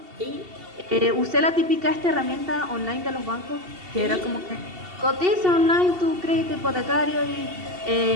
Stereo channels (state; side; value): late; left; 2.7 ms